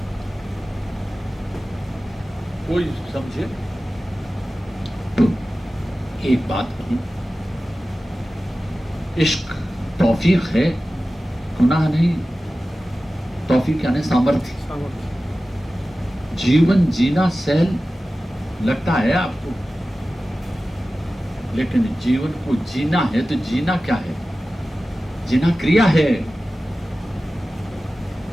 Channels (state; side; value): normal; both; correlation 0.95